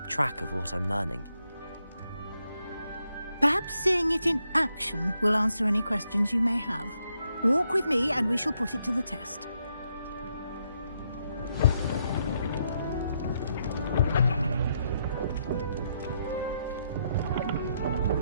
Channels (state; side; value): inverted; both; correlation -0.78